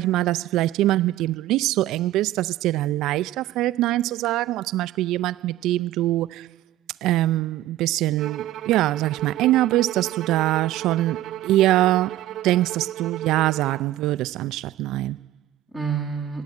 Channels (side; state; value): left; quieter; 14.5 dB